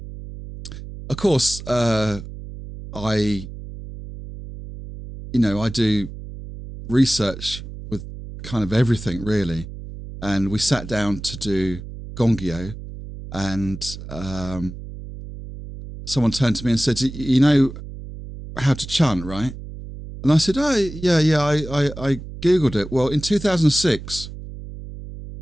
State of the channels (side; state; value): right; noise; hum, 12 dB below the sound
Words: course, I do research with kind of everything really. And we sat down to do Gongyo, and someone turned to me and said, you know how to chant, right? And I said, oh, yeah, I Googled it. Well, in 2006,